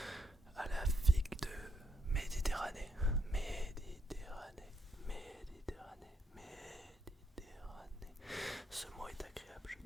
à la figue de Méditerranée. Ce mot est agréable, je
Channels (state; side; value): normal; both; correlation 0.75